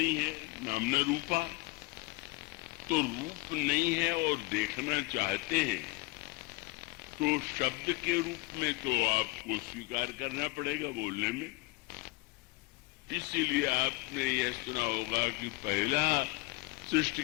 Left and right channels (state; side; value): quieter; right; 23.6 dB